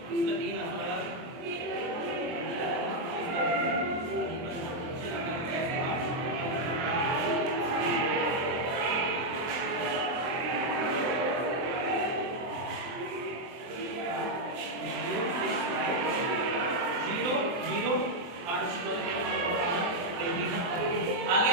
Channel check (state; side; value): late; left; 23 ms